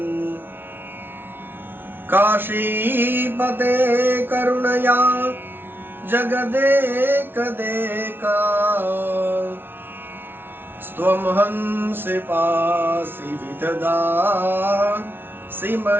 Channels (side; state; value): left; late; 0.11 ms